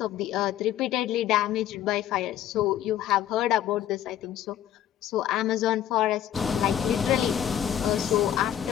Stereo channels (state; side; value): quieter; right; 11.0 dB